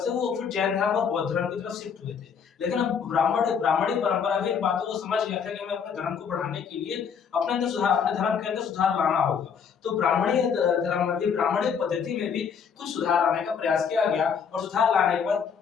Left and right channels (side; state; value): right; quieter; 6.9 dB